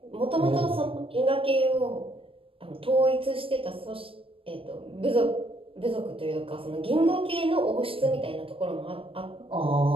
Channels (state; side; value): late; left; 0.26 ms